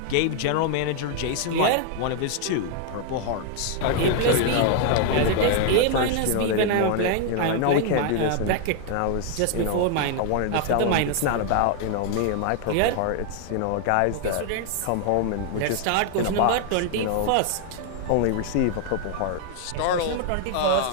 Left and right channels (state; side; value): different; both; correlation 0.00